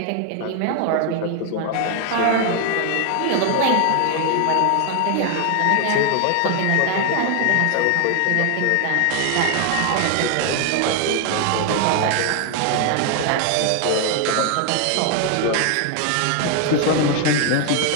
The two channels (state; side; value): different; both; correlation 0.01